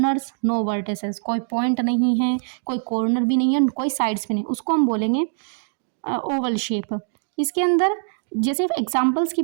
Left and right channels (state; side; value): silent; left; digital silence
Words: नो वर्टिसेस, कोई पॉइंट नहीं है, कोई कॉर्नर भी नहीं है, कोई साइड्स भी नहीं, उसको हम बोलेंगे ओवल शेप। इसके अंदर जैसे एग्जांपल्स की